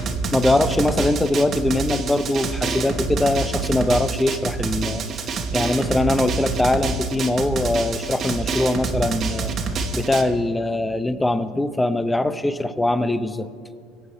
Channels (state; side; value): normal; both; correlation 0.84